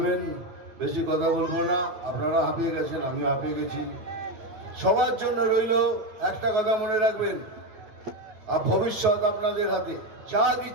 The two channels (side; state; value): left; late; 9.3 ms